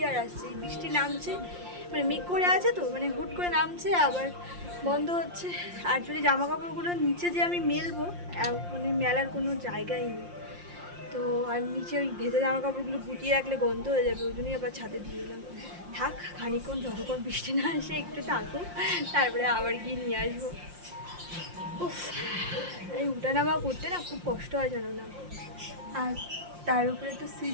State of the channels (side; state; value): left; late; 5.7 ms